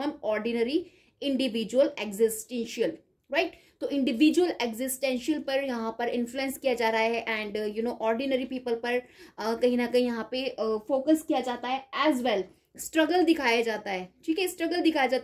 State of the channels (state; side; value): identical; both; correlation 1.00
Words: ordinary individual existential, right. तो इंडिविजुअल एग्जिस्टेंशियल पर यहाँ पर इन्फ्लुएंस किया जा रहा है एंड ऑर्डिनरी पीपल पर कहीं ना कहीं यहाँ पे फोकस किया जाता है। एज वेल स्ट्रगल दिखाया जाता है, ठीक है, स्ट्रगल दिखाया